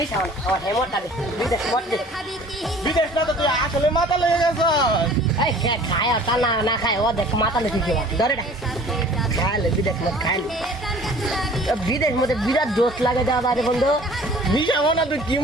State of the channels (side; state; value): both; normal; correlation 0.49